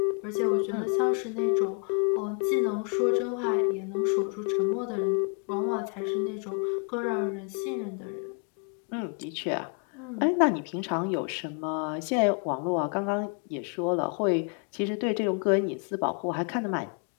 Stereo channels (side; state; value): right; quieter; 39.0 dB